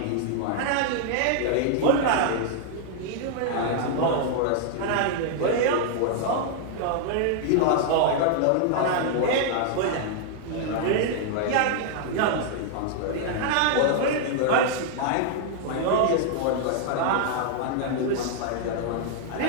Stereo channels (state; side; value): different; both; correlation -0.01